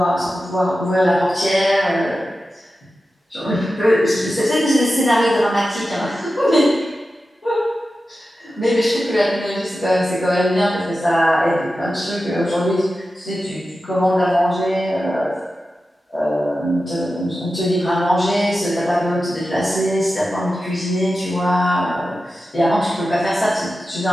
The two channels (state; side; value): normal; both; correlation 0.93